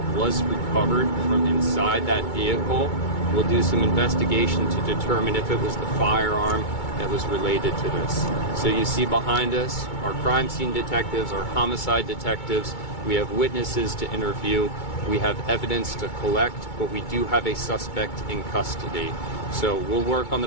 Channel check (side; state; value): right; late; 2.2 ms